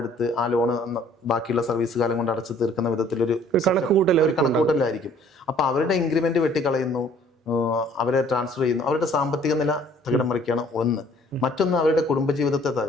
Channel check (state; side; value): normal; both; correlation 0.56